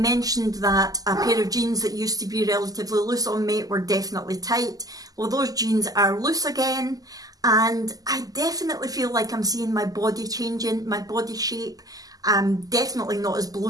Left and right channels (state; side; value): late; left; 0.17 ms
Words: that a pair of jeans that used to be relatively loose on me were definitely tight. Well, those jeans are loose again, and I definitely feel like I'm seeing my body changing, my body shape. I'm definitely not as